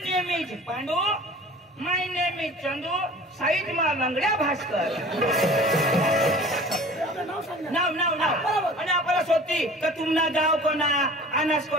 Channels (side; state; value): both; normal; correlation 0.44